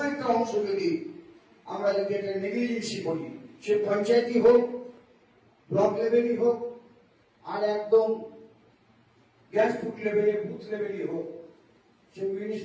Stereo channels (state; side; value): identical; both; correlation 1.00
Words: একটা অংশ যদি আমরা যদি একটা নেগলিজেন্সি করি, সে পঞ্চায়েতই হোক, ব্লক লেভেলই হোক, আর একদম গ্রাসরুট লেভেলে বুথ লেভেলই হোক, সে